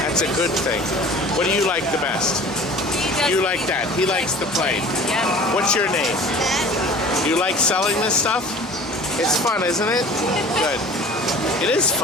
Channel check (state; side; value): normal; both; correlation 0.43